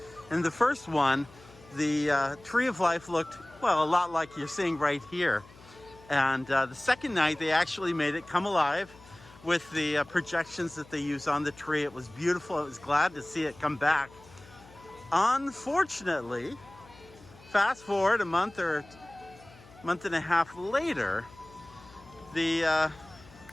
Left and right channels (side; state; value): left; noise; hum, 23 dB below the sound